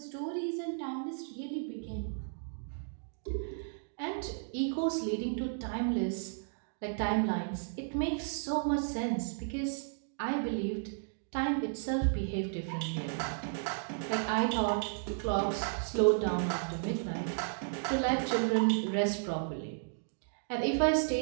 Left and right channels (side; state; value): left; silent; digital silence